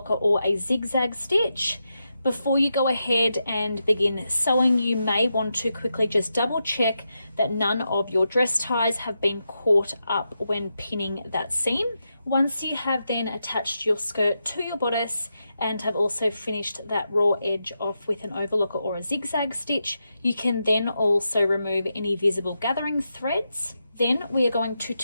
or a zigzag stitch. Before you go ahead and begin sewing, you may want to quickly just double check that none of your dress ties have been caught up when pinning that seam. Once you have then attached your skirt to your bodice and have also finished that raw edge off with an overlocker or a zigzag stitch, you can then also remove any visible gathering threads. Then we are going to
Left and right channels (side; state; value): both; inverted; correlation -0.86